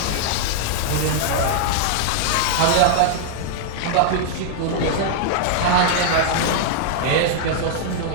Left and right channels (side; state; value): both; different; correlation -0.01